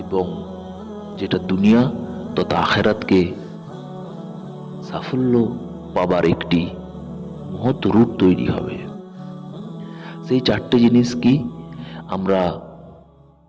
এবং যেটা দুনিয়া তথা আখিরাতকে সাফল্য পাবার একটি মহৎ রূট তৈরি হবে। সেই চারটে জিনিস কি আমরা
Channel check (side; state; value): both; identical; correlation 1.00